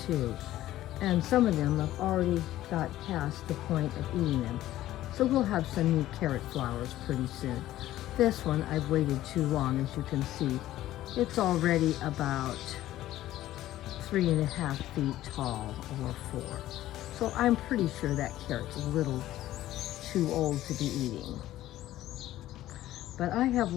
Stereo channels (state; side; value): quieter; right; 14.3 dB